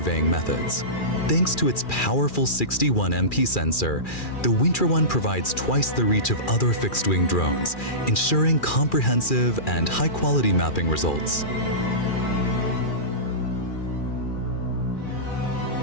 methods. Thanks to its powerful 61 MP sensor, the Wingtra One provides twice the reach of other fixed-wing drones, ensuring comprehensive and high-quality mapping results.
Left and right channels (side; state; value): right; late; 2.4 ms